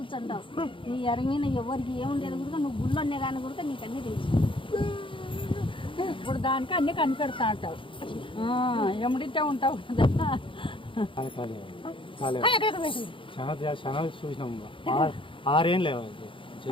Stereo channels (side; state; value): right; late; 0.25 ms